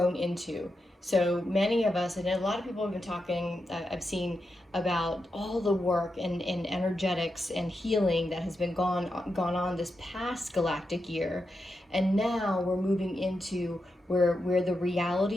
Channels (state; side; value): normal; both; correlation 0.87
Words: into. So many of us, and a lot of people have been talking, I've seen about all the work and energetics and healing that has been gone on this past galactic year. And now we're moving into where the